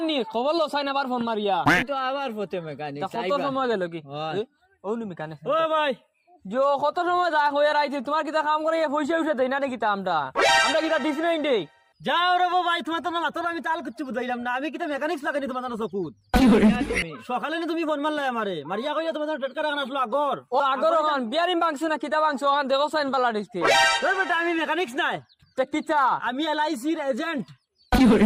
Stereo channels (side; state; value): both; identical; correlation 1.00